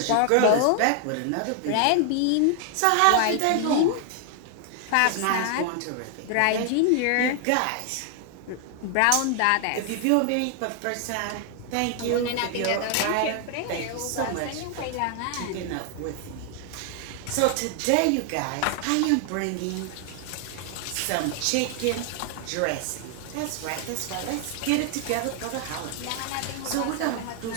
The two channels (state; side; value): different; both; correlation 0.00